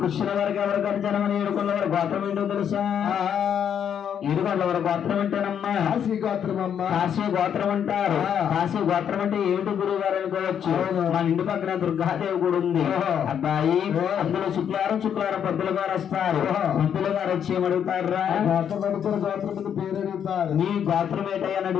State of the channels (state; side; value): quieter; right; 8.6 dB